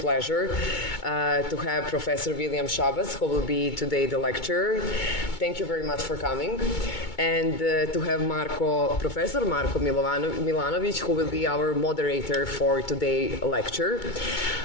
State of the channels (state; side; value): late; right; 2.2 ms